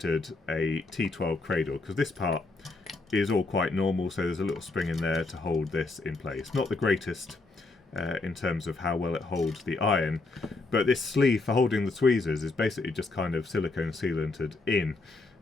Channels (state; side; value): quieter; right; 3.4 dB